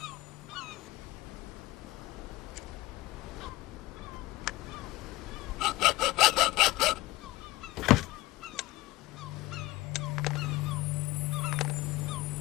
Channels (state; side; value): quieter; right; 19.1 dB